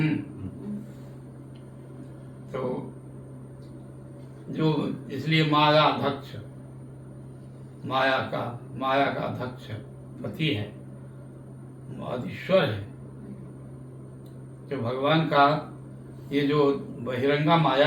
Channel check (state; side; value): identical; both; correlation 1.00